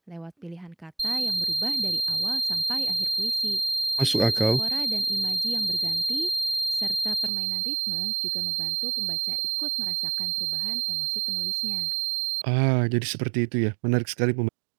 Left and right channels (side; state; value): left; drops out; at 7.3 s